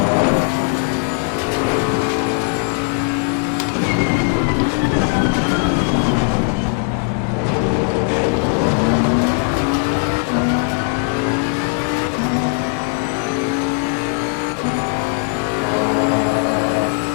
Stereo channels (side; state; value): right; quieter; 35.1 dB